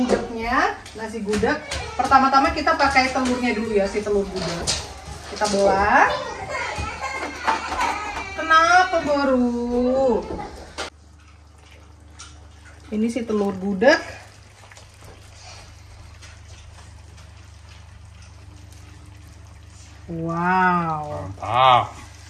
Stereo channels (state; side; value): identical; both; correlation 1.00